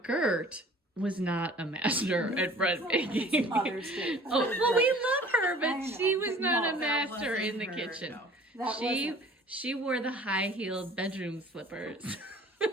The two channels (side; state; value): both; normal; correlation 0.49